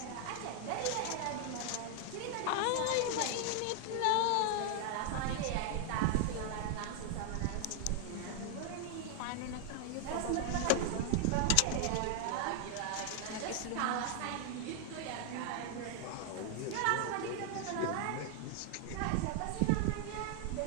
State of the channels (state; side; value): different; both; correlation 0.00